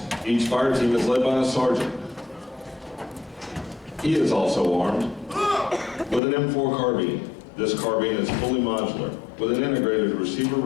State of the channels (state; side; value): drops out; right; at 6.2 s